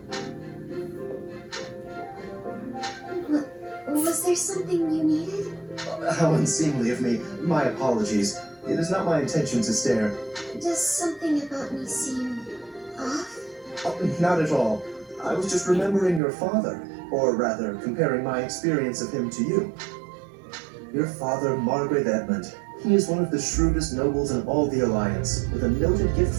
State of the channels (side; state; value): left; drops out; at 16.2 s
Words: Was there something you needed? How unseemly of me. My apologies. It is not my intention to stare. Does something about me seem off? Oh, not at all. I was just remembering your father, or rather, comparing my experience of him to you. Your father, Margrave Edmund. He is one of the shrewdest nobles in all the Alliance, with a noted gift